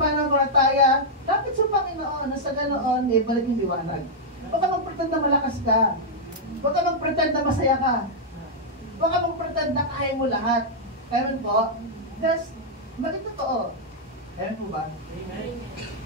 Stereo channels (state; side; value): normal; both; correlation -0.05